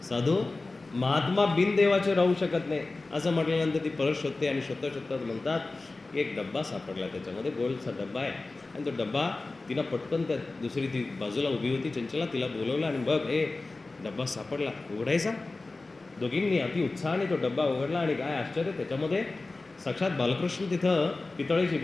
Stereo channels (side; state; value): right; quieter; 3.4 dB